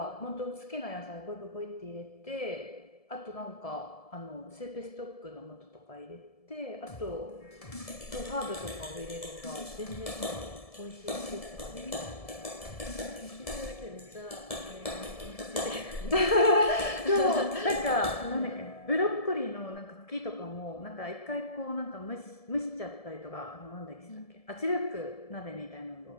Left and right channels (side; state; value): right; late; 1.7 ms